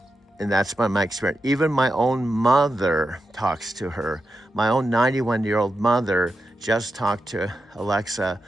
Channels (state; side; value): normal; both; correlation 0.88